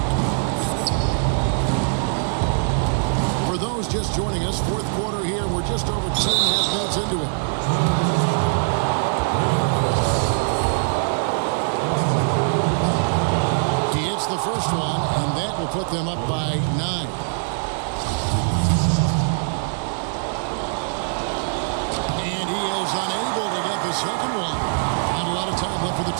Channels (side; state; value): left; silent; digital silence